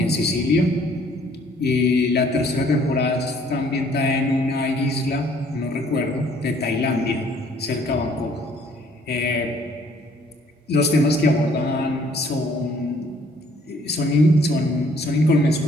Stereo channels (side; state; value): both; normal; correlation 0.61